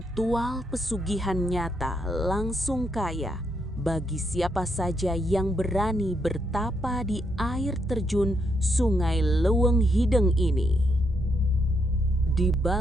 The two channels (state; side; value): normal; both; correlation 0.77